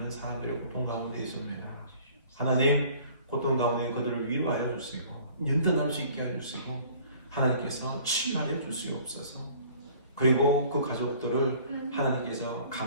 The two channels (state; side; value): inverted; both; correlation -0.52